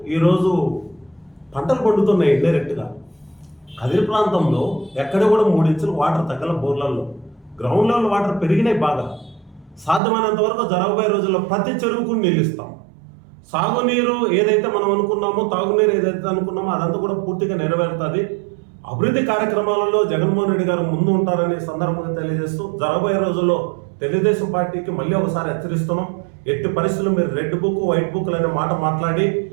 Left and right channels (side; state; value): left; drops out; at 10.0 s